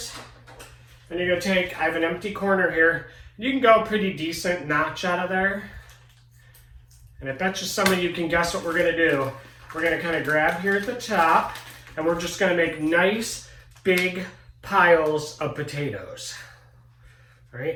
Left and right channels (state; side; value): identical; both; correlation 1.00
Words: and you're gonna take, I have an empty corner here. You can go pretty decent notch out of there. And I bet you some of you can guess what we're gonna do. We're gonna kind of grab here at the top and we're just gonna make nice big piles of potatoes. All right,